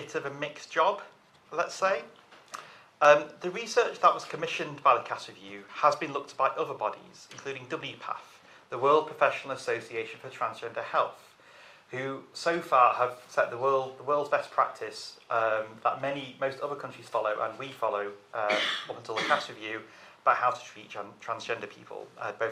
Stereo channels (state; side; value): identical; both; correlation 1.00